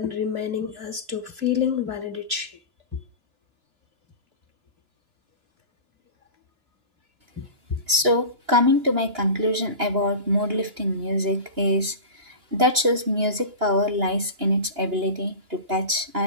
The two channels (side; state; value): left; late; 2.9 ms